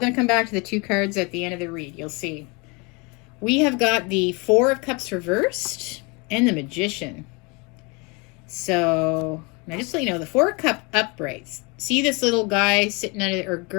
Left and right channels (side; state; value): right; quieter; 29.3 dB